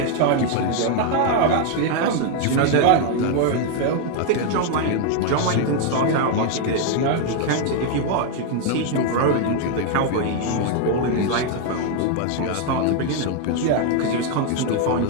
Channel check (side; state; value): both; different; correlation 0.00